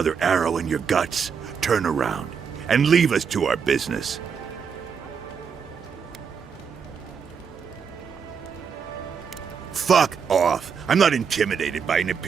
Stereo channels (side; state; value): left; quieter; 6.5 dB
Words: arrow in your guts, turn around and leave us to our business. Fuck off. I'm not intimidated by an